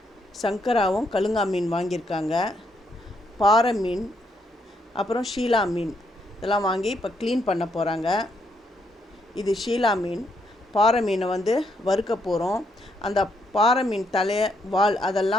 சங்கராவும் கழுங்கா மீன் வாங்கியிருக்காங்க, பாறை மீன், அப்புறம் ஷீலா மீன் இதெல்லாம் வாங்கி இப்போ க்ளீன் பண்ண போகிறாங்க. இது ஷீலா மீன். பாறை மீனை வறுக்க போகிறோம். அந்த பாறை மீன் தலை, வால்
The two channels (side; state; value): both; normal; correlation 0.75